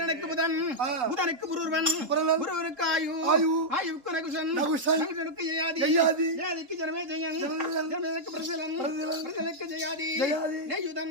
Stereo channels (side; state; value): left; late; 3.8 ms